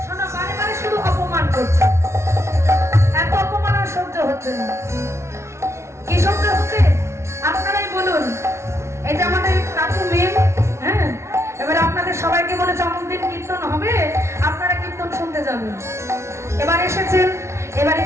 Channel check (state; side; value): late; left; 0.13 ms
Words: সবাইকে বলেছে অমুক দিন কীর্তন হবে, আপনারা কীর্তন শুনতে যাবেন। এবার এসেছেন, এবার